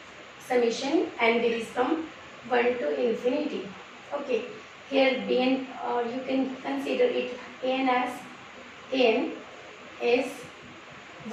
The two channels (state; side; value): identical; both; correlation 1.00